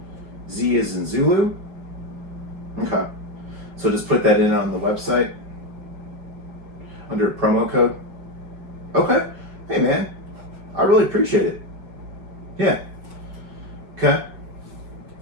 Z as in Zulu. Okay, so just put that in on the website under promo code. Okay, hey man, I really appreciate it. Yeah. Okay.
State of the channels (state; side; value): late; left; 5.3 ms